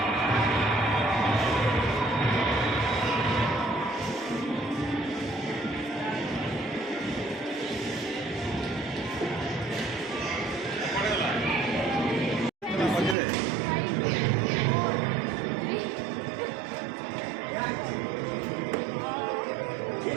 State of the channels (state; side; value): drops out; left; at 13.2 s